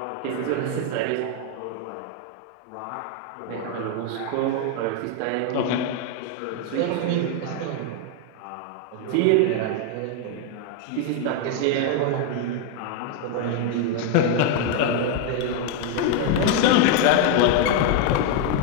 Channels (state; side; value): different; both; correlation 0.01